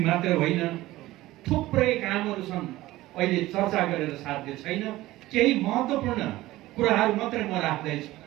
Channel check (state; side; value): quieter; left; 17.1 dB